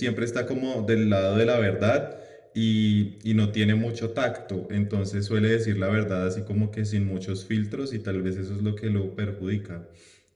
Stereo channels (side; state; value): both; identical; correlation 1.00